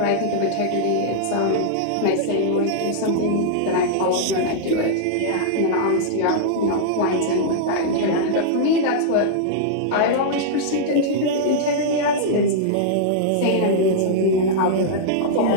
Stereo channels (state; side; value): different; both; correlation -0.02